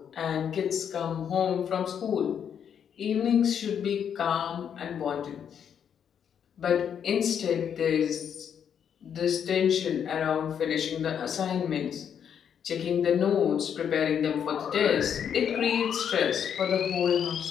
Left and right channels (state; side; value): quieter; right; 8.2 dB